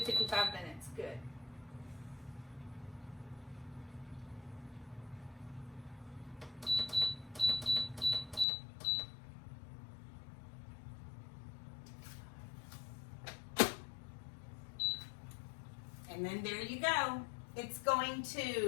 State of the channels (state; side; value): drops out; right; at 8.5 s